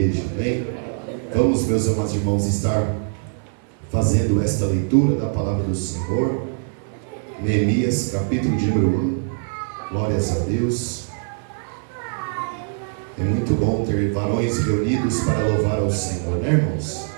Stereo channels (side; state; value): left; silent; 62 dB below the other